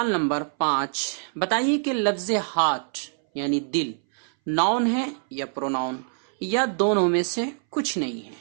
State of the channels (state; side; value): silent; left; 60 dB below the other